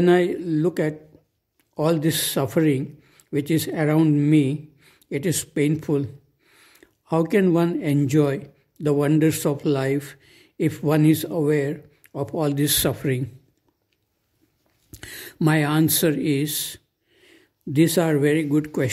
I look at all this suffering which is around me, it is painful. How can one enjoy the wonders of life if one is aware of all this suffering? My answer is, these are very good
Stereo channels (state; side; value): identical; both; correlation 1.00